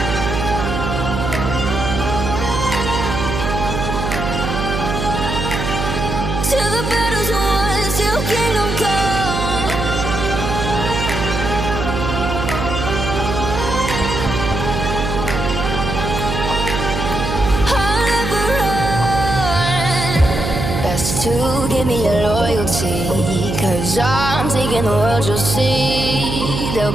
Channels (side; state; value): right; noise; hum, 3 dB below the sound